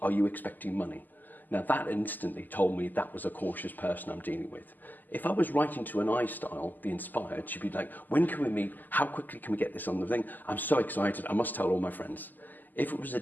Are you expecting money? Now that instantly told me that was a cautious person I'm dealing with. If I was writing to an I style, the inspired, she'd be like, when can we meet? How quickly can we get this on the thing? I'm so excited, I must tell all my friends. If it was a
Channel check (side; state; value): right; late; 0.086 ms